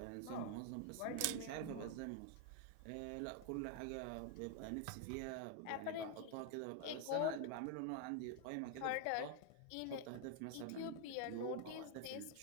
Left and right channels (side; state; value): both; different; correlation 0.00